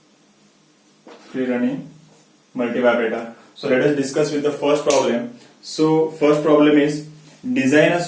Free running multivibrator. So let us discuss with the first problem. So first problem is design a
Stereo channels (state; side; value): identical; both; correlation 1.00